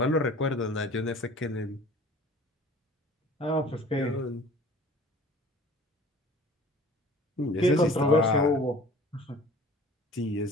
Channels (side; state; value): both; normal; correlation 0.47